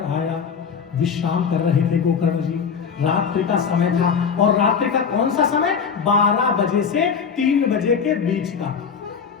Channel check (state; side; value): quieter; right; 6.4 dB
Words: आया, विश्राम कर रहे थे गोकर्ण जी। रात्रि का समय था, और रात्रि का कौन सा समय? 12 बजे से 3 बजे के बीच का।